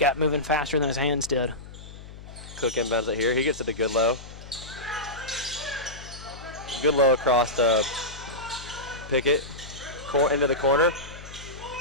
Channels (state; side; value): noise; left; hum, 15 dB below the sound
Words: moving faster than his hands did. Cook inbounds it here. He gets it to Goodlow. Goodlow across to Pickett. Into the corner.